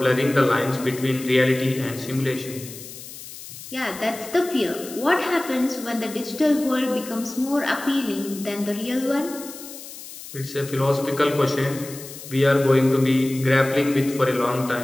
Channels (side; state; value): left; noise; hiss, 14 dB below the sound